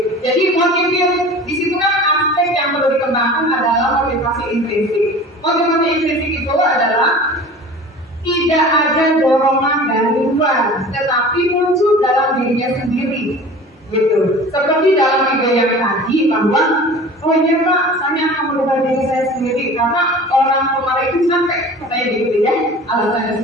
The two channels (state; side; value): normal; both; correlation 0.40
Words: Jadi motivasi di situ kan aspek yang perlu dikembangkan adalah motivasi intrinsik. Motivasi intrinsik itu adalah tidak ada dorongan dari luar, tetapi muncul dalam dirinya sendiri, gitu. Seperti dalam video yang tadi bahwa, oh iya Pak, saya akan merubah diri saya sendiri karena orang kemarin itu sampai katanya gitu ya,